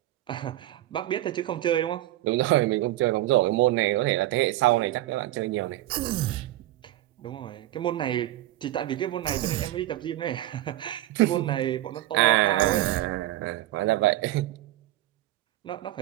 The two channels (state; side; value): quieter; left; 15.3 dB